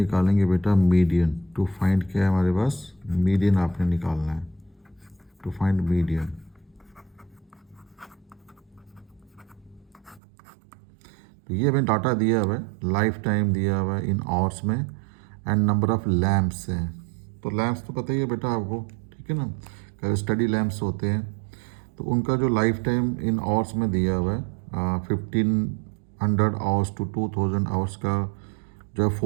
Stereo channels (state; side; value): drops out; left; at 10.2 s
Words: बेटा मीडियन। टू फाइंड क्या है हमारे पास, मीडियन आपने निकालना है। To find median. तो ये हमें डाटा दिया हुआ है, लाइफ टाइम दिया हुआ है इन आवर्स में एंड नंबर ऑफ लैम्प्स हैं। तो लैम्प्स तो पता ही है बेटा आपको, ठीक है ना। स्टडी लैम्प्स होते हैं तो उनका जो लाइफ टाइम इन आवर्स में दिया हुआ है 1500 आवर्स टू 2000 आवर्स का जो है